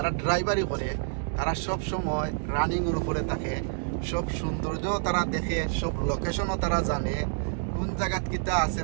ড্রাইভারি করে তারা সব সময় রানিং এর উপরে থাকে, সব সৌন্দর্য তারা দেখে, সব লোকেশনও তারা জানে, কোন জায়গাত কিতা আছে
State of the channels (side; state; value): left; silent; digital silence